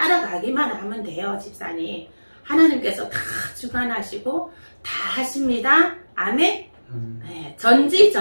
하면 돼요, 집사님. 하나님께서 다 주관하시고 다 하십니다. 아멘. 네,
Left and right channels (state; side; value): inverted; both; correlation -1.00